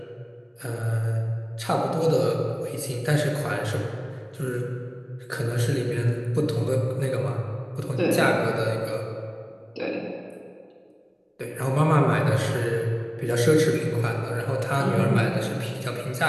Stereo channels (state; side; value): identical; both; correlation 1.00